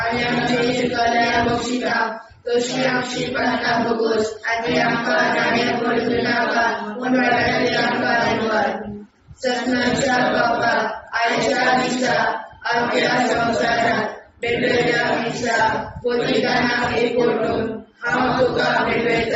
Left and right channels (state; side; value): identical; both; correlation 1.00